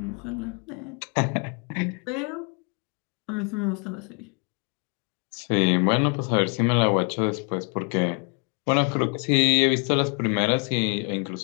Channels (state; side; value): quieter; right; 36.1 dB